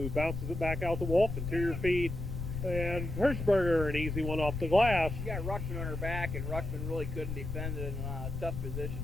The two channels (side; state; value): left; noise; rumble, 5 dB below the sound